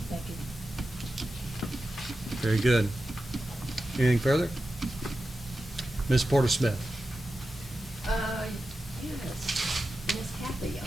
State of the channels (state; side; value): normal; both; correlation 0.92